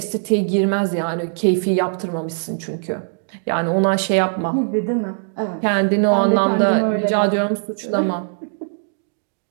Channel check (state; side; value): silent; left; digital silence